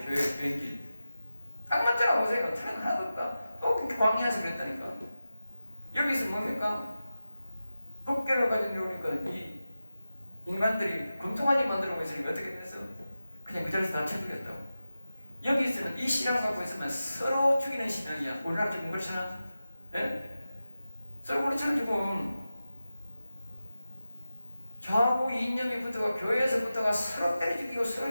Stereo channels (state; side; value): inverted; both; correlation -0.93